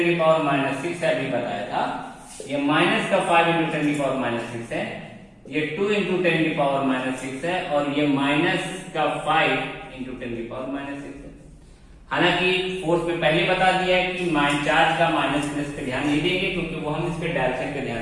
की पावर माइनस 6 है, अभी बताया था। ये माइनस का 5 इंटू 10 की पावर माइनस 6 है, ये 2 इंटू 10 की पावर माइनस 6 है, और ये माइनस का 5 इंटू 10 की पावर माइनस 6 है। हालांकि फोर्स में पहले बता दिया है कि चार्ज का माइनस प्लस पे ध्यान नहीं देंगे क्योंकि वो हम इसके डायरेक्शन पे ध्यान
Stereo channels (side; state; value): both; identical; correlation 1.00